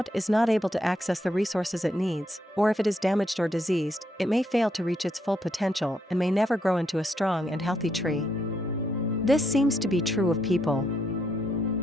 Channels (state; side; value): normal; both; correlation 0.76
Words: is not able to access the resources it needs, or if it is damaged or diseased, it may fail to reach its full potential and may never grow into a strong and healthy tree. This seems to be true of people.